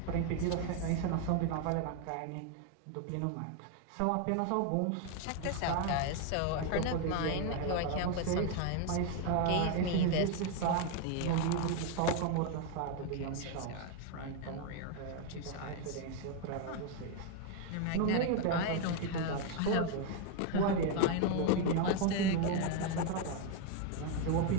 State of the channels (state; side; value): different; both; correlation 0.01